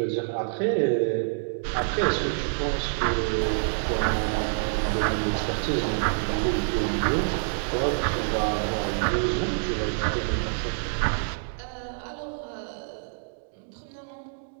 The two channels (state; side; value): silent; left; digital silence